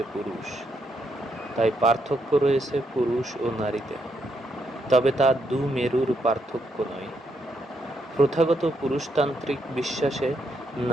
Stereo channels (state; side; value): normal; both; correlation 0.77